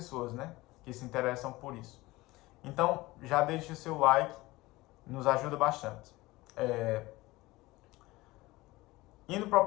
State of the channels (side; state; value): right; quieter; 20.0 dB